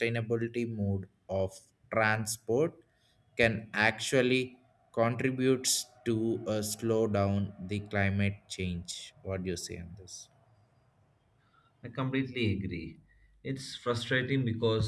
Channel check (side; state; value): both; identical; correlation 1.00